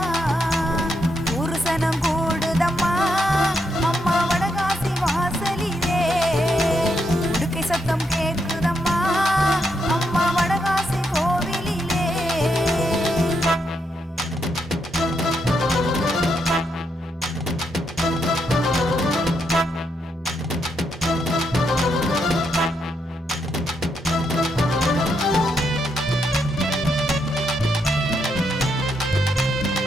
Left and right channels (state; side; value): normal; both; correlation 0.79